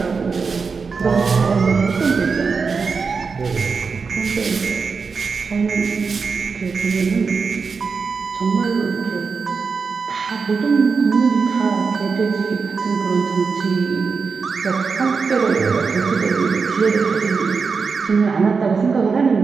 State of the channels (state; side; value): quieter; left; 5.0 dB